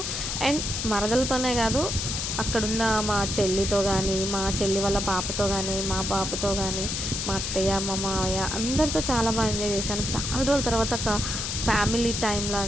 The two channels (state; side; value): noise; left; hiss, 3 dB below the sound